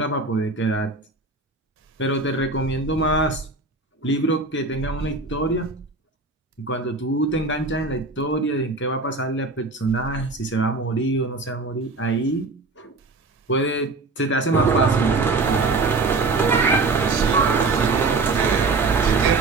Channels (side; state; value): left; quieter; 3.6 dB